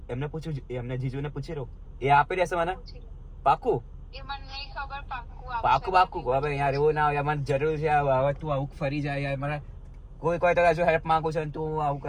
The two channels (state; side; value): identical; both; correlation 1.00